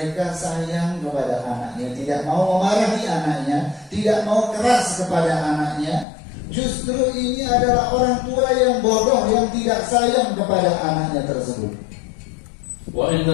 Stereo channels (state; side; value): drops out; right; at 6.1 s